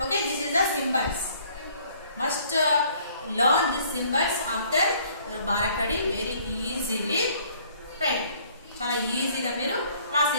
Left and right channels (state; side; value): inverted; both; correlation -0.59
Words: Okay, this is the symbols. Must learn these symbols after Bharakadi very easily. Right, చాలా ఈజీగా మీరు